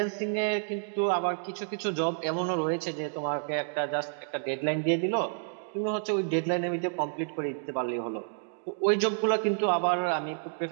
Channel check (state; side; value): silent; left; digital silence